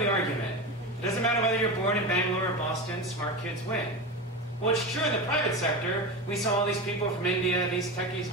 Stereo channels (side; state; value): both; normal; correlation 0.23